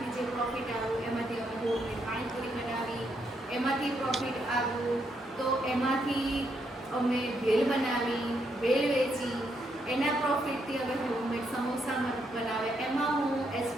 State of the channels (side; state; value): both; normal; correlation 0.77